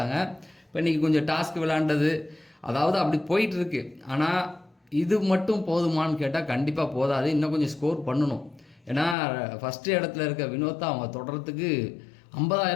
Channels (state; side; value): drops out; right; at 9.2 s